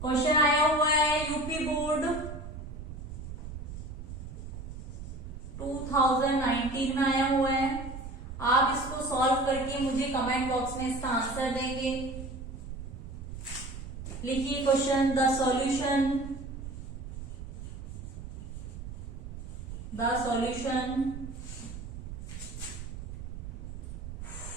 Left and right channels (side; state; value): right; noise; rumble, 9 dB below the sound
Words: क्वेश्चन आया हुआ है, यूपी बोर्ड 2019 में आया हुआ है। आप इसको सॉल्व करके मुझे कमेंट बॉक्स में इसका आंसर देंगे। लिखिए question, the solution